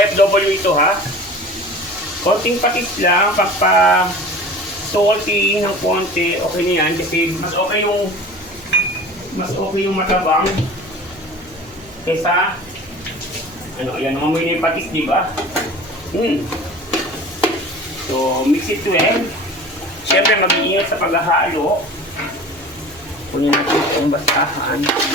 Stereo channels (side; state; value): right; noise; hum, 25 dB below the sound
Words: ito ha. Konting patis lang, pagpa salty ng konti, okay na yan kasi mas okay yung matabang kesa ano, ayan, mamoy na yung patis, di ba? So, mix it well. Siyempre, mag-iingat sa paghahalo. Kunin natin yung basahan.